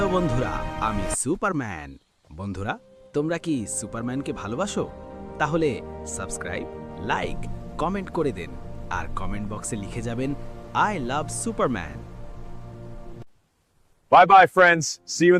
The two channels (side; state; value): both; identical; correlation 1.00